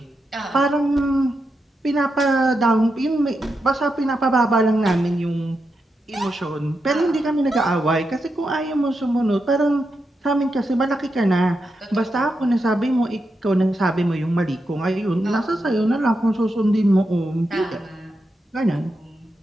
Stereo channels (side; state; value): both; normal; correlation 0.86